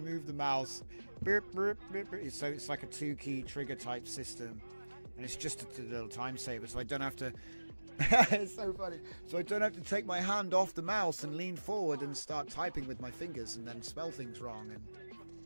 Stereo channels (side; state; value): both; inverted; correlation -1.00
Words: the mouse. Beep, beep, beep, beep. So it's like a 2-key trigger type system. And it's just a little time saver. So I don't have to... It's so funny. So I don't have to take my hand off the mouse and lean forward and start typing with my fingers and then spell things wrong.